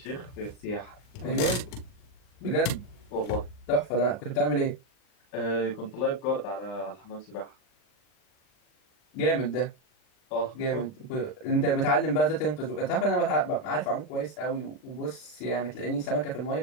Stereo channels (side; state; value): right; late; 39 ms